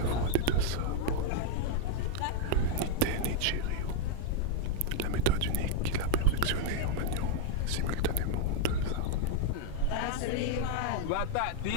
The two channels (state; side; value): different; both; correlation 0.00